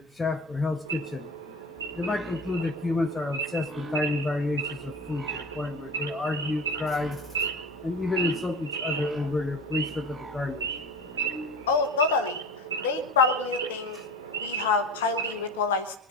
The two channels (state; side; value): normal; both; correlation 0.33